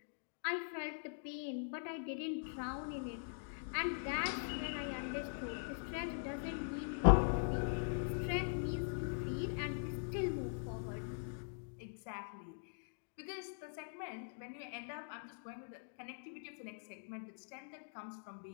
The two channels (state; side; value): silent; right; digital silence